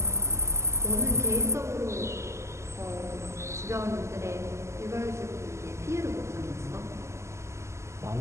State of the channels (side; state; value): left; late; 0.13 ms